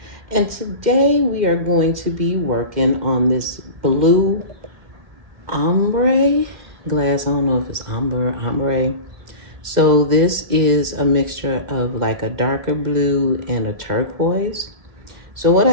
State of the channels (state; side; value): late; left; 2.1 ms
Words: And today we are going to be working on this blue ombre glass. I don't know if it's ombre. So this is a mixture of like a darker blue and a turquoise. So what